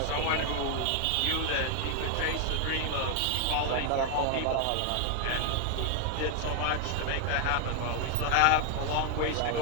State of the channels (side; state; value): both; different; correlation 0.00